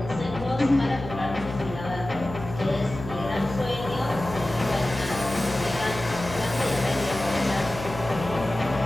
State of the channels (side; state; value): left; noise; hum, 11 dB below the sound